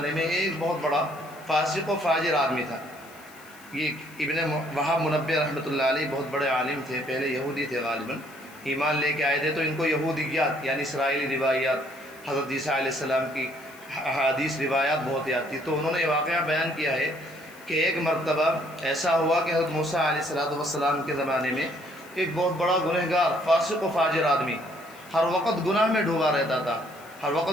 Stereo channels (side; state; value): left; noise; hiss, 23 dB below the sound